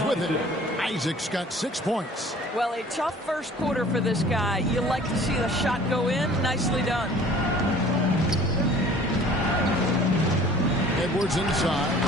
with it. Isaac's got 6 points. Well, a tough first quarter for this guy. You like to see the shot go in. Nicely done. Edwards inside.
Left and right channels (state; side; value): normal; both; correlation 0.49